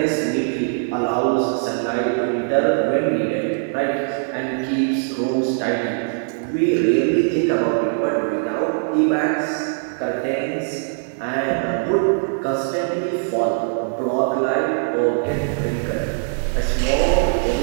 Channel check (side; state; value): left; silent; digital silence